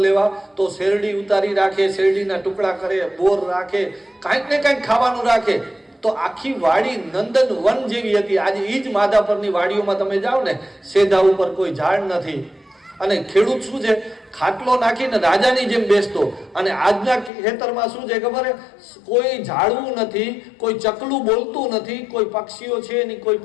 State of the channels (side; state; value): right; drops out; at 17.3 s